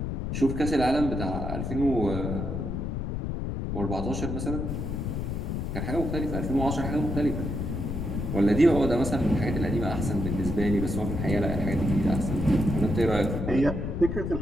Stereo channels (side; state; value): left; noise; rumble, 3 dB below the sound